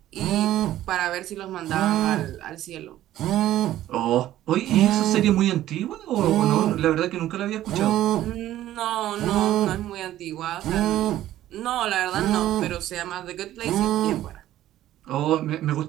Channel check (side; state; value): left; quieter; 13.5 dB